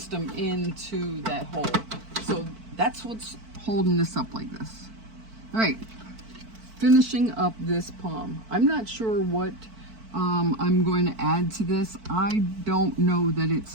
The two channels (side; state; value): left; late; 4.5 ms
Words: into that hole. So that's what's holding this up like this. All right, finishing up this palm. I'm not sure what I'm going to add to this. I don't know that it's